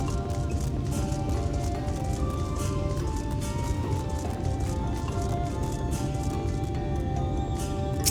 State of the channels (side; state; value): both; identical; correlation 1.00